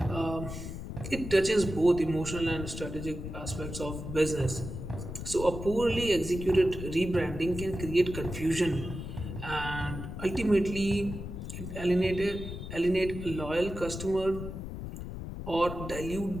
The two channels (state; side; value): noise; left; rumble, 8 dB below the sound